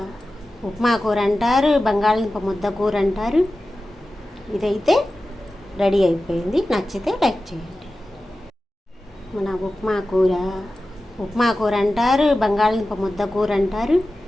కూర అంటారు, బంగాళదుంప ముద్ద కూర అంటారు. ఇదైతే రెడీ అయిపోయింది. నచ్చితే లైక్ చేయండి. మన ఉప్మా కూర అంటారు, బంగాళదుంప ముద్ద కూర అంటారు.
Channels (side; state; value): both; normal; correlation 0.94